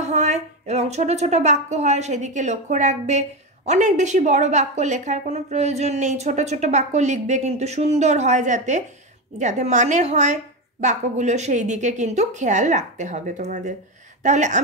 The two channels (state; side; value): normal; both; correlation 0.15